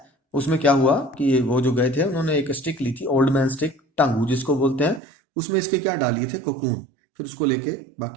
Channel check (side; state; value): left; drops out; at 5.0 s